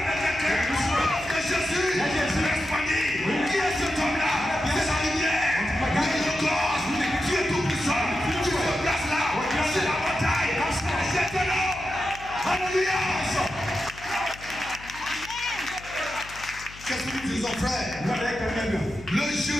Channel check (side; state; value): left; noise; hum, 18 dB below the sound